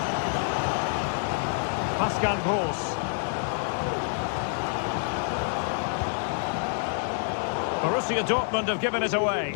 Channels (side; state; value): right; silent; 60 dB below the other